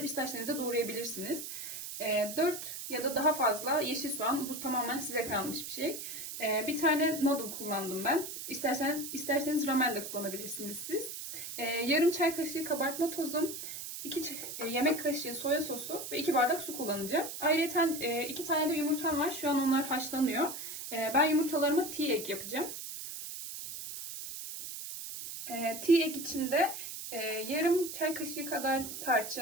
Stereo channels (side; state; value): right; noise; hiss, 8 dB below the sound